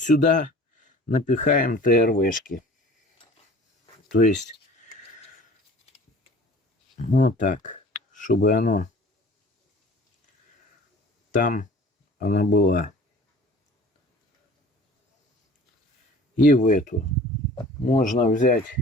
напихаем ТРВшки. То есть вот так, чтобы оно там она была. И в эту можно взять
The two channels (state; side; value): normal; both; correlation 0.46